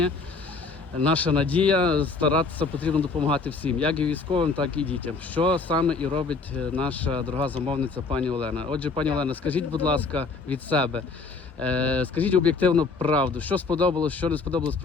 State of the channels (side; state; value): right; quieter; 4.3 dB